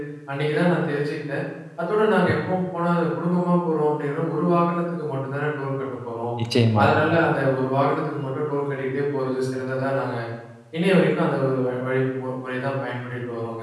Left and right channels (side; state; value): both; identical; correlation 1.00